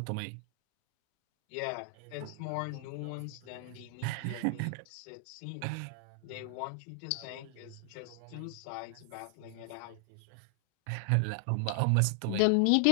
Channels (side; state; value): both; different; correlation 0.00